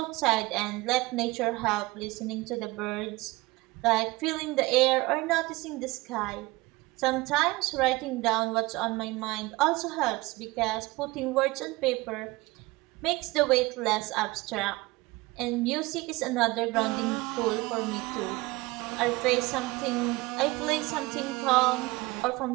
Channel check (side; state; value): left; quieter; 21.8 dB